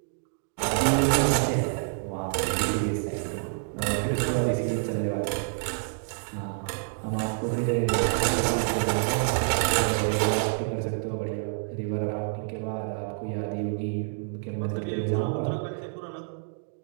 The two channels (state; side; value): silent; left; digital silence